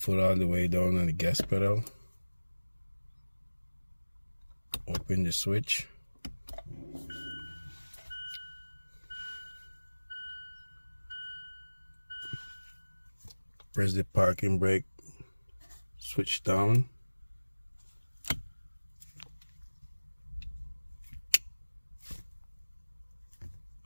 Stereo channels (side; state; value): both; inverted; correlation -1.00